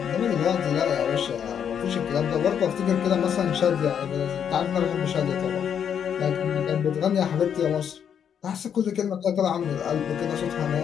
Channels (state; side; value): quieter; right; 8.2 dB